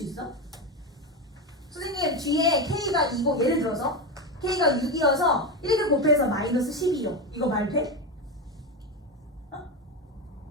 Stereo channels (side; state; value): both; normal; correlation 0.15